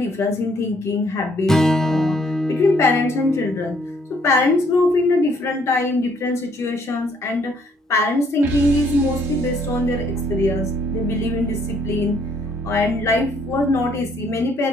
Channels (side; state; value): both; normal; correlation 0.66